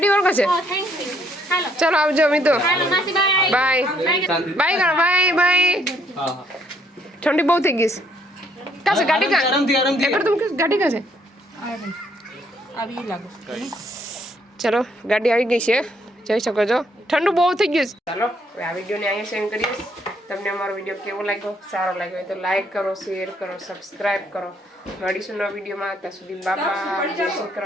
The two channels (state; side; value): normal; both; correlation 0.69